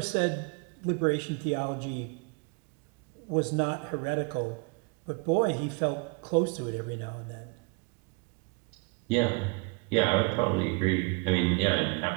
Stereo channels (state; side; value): quieter; left; 30.5 dB